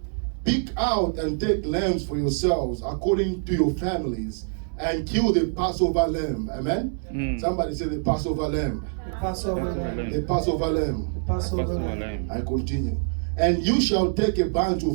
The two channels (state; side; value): silent; left; digital silence